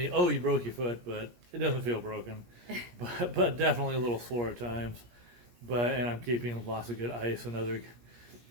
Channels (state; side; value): late; left; 17 ms